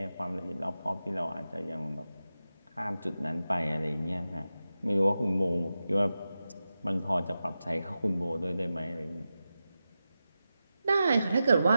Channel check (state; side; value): inverted; both; correlation -0.92